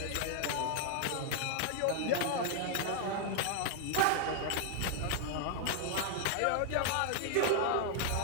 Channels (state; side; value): different; both; correlation 0.00